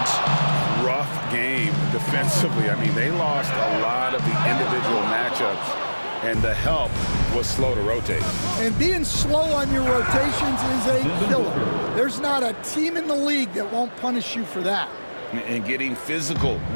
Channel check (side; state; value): both; inverted; correlation -1.00